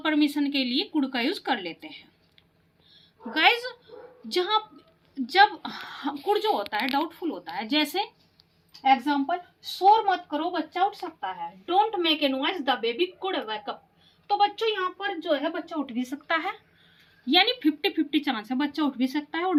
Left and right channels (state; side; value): identical; both; correlation 1.00